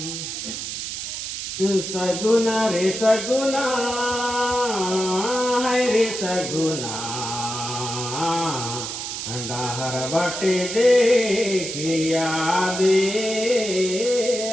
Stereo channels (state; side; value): noise; right; hiss, 5 dB below the sound